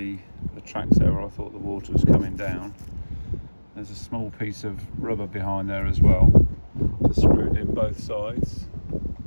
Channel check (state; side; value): inverted; both; correlation -1.00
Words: tracks there where I thought the water was coming down. There's a small piece of rubber behind there as well to screw it in both sides.